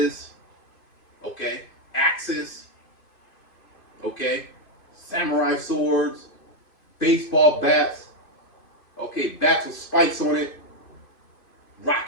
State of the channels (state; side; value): late; right; 2.5 ms